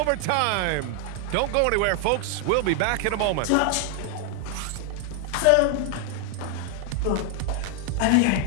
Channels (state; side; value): different; both; correlation 0.00